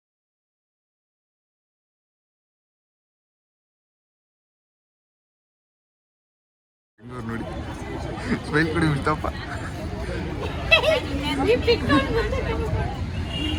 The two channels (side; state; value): both; identical; correlation 1.00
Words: ನೋಡಿ ಸ್ಮೈಲ್ ಕೊಡಿ ಬಿಡ್ತಪ್ಪ.